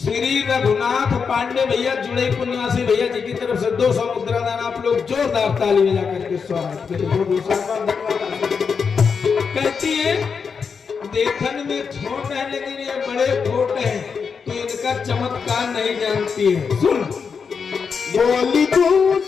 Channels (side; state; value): right; quieter; 5.9 dB